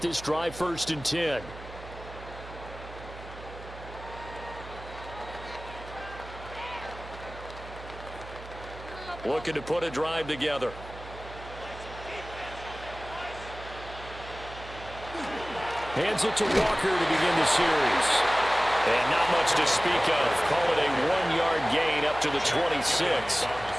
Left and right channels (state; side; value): noise; right; hum, 14 dB below the sound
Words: drive 1st and 10. Looking to put a drive together. Hands it to Walker to begin the series. And not much to speak of. Call it a 1-yard gain up to the 26.